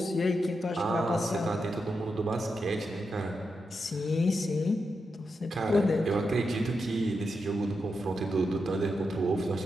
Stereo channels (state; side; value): normal; both; correlation 0.86